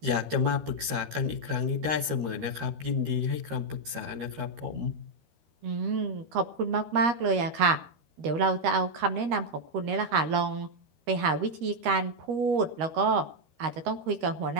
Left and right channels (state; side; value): late; left; 13 ms